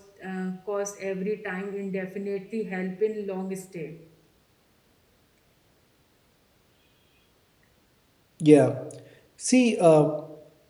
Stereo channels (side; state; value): both; identical; correlation 1.00